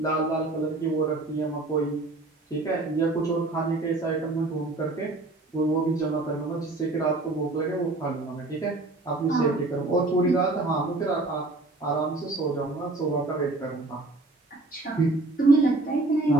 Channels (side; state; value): left; quieter; 3.0 dB